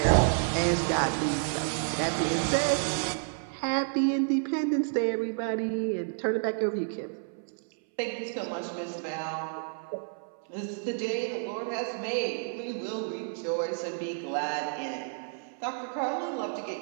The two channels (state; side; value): silent; left; 58 dB below the other